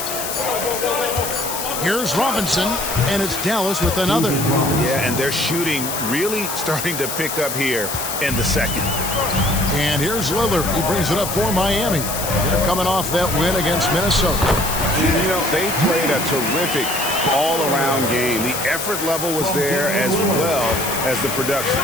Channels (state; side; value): noise; left; hiss, 5 dB below the sound